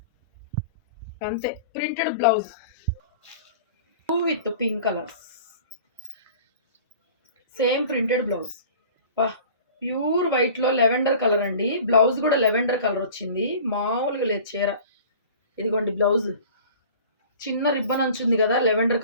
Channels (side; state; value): both; inverted; correlation -0.43